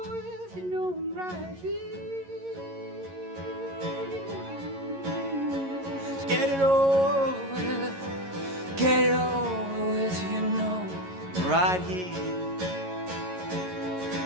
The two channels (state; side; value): late; left; 11 ms